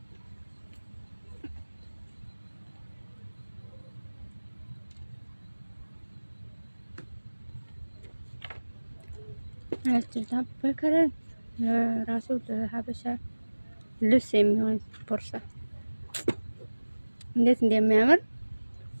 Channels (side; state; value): both; inverted; correlation -1.00